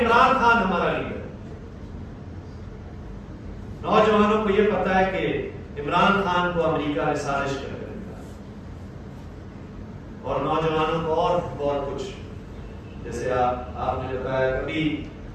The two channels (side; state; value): both; identical; correlation 1.00